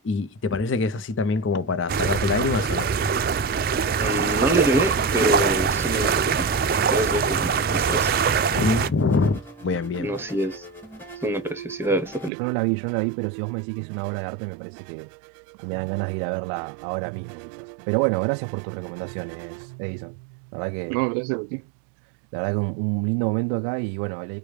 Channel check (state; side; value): drops out; left; at 12.3 s